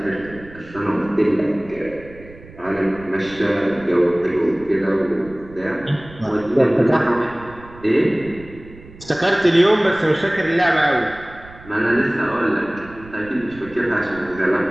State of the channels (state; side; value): noise; right; rumble, 20 dB below the sound